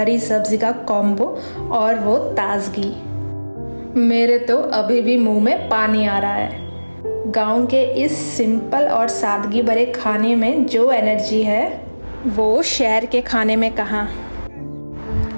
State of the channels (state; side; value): inverted; both; correlation -1.00